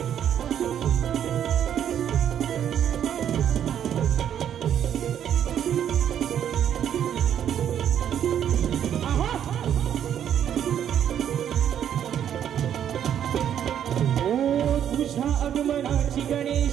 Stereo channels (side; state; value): left; quieter; 9.6 dB